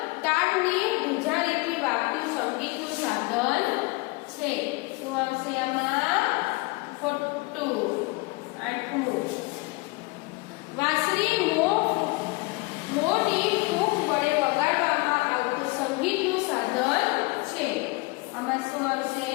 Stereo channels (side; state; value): right; quieter; 25.2 dB